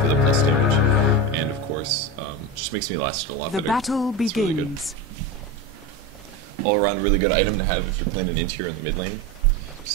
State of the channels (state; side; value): normal; both; correlation 0.21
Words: for the plus damage. And of course, just makes me last a lot better. The battle begins. Really good. All around really good item to have if you're playing an int here in the mid lane.